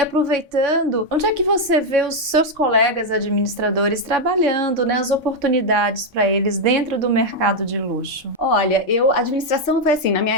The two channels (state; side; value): normal; both; correlation 0.02